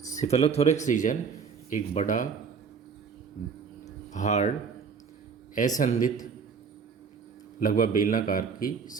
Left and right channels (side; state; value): left; quieter; 5.9 dB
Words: सेफेलोथोरैक्स रीजन एक बड़ा हार्ड असंधित लगभग बेलनाकार की